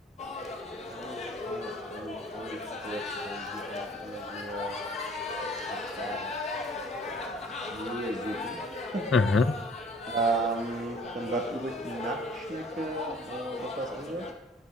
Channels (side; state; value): both; normal; correlation 0.53